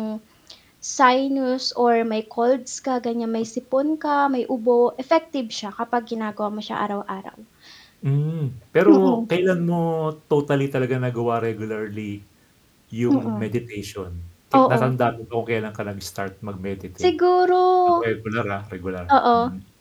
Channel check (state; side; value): identical; both; correlation 1.00